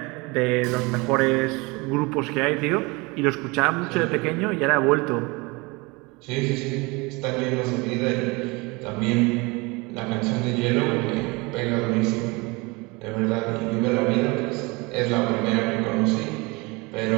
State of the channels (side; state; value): left; quieter; 25.8 dB